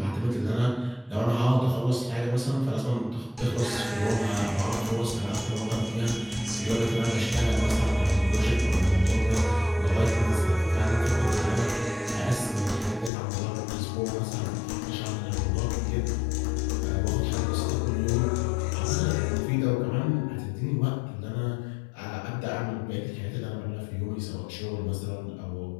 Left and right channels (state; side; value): drops out; right; at 13.1 s